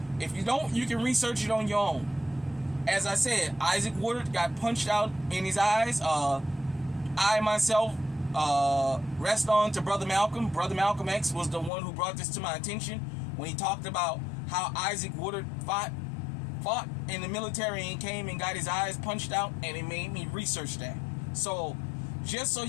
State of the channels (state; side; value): drops out; right; at 11.7 s